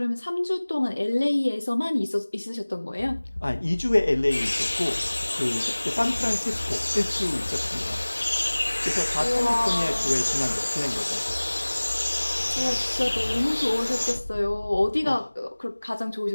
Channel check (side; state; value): both; inverted; correlation -1.00